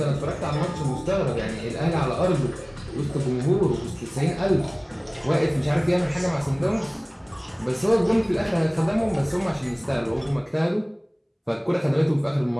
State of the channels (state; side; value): identical; both; correlation 1.00